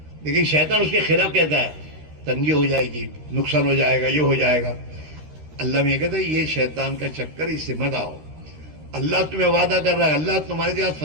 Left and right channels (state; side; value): late; left; 13 ms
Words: لیکن شیطان اس کے خلاف کہتا ہے تنگی ہو جائے گی، نقصان ہو جائے گا، یہ ہو جائے گا۔ اللہ میں یہ کہتا ہے یہ شیطان کا چکر، اس سے مت آؤ، اللہ تمہیں وعدہ کر رہا ہے، اللہ تمہارے ساتھ